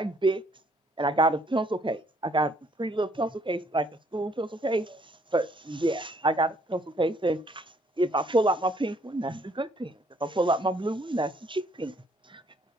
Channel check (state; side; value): normal; both; correlation 0.65